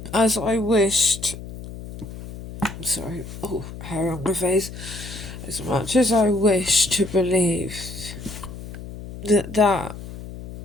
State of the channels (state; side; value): noise; left; hum, 12 dB below the sound